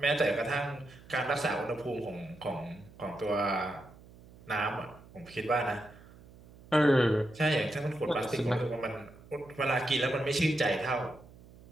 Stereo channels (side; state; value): right; noise; hum, 22 dB below the sound